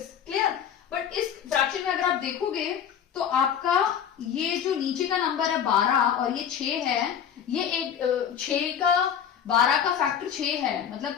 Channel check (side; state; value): right; quieter; 8.6 dB